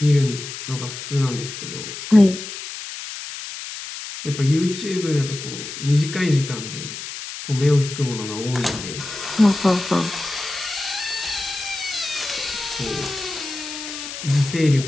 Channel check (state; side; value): noise; left; hiss, 9 dB below the sound